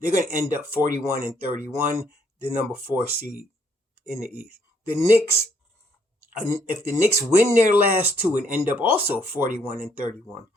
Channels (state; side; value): normal; both; correlation 0.69